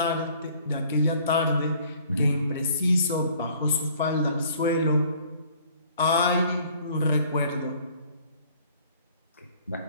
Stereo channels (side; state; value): both; inverted; correlation -0.56